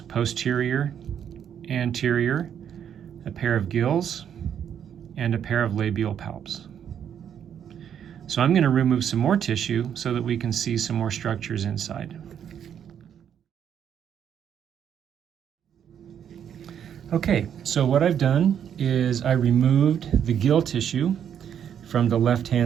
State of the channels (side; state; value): left; quieter; 8.9 dB